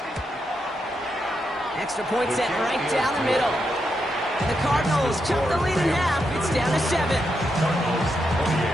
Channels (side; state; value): both; normal; correlation 0.83